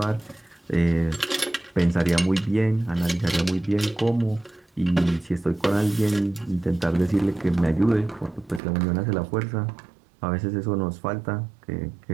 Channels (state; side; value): drops out; left; at 8.6 s